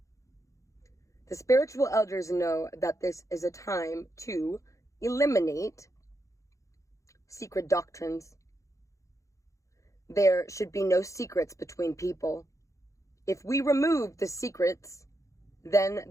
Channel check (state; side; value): late; right; 0.15 ms